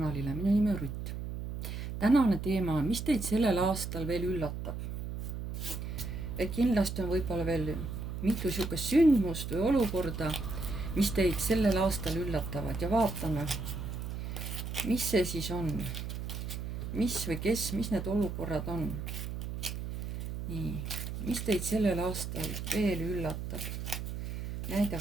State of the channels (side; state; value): right; noise; hum, 5 dB below the sound